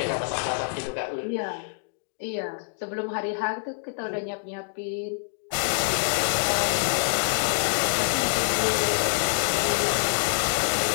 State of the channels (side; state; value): right; silent; digital silence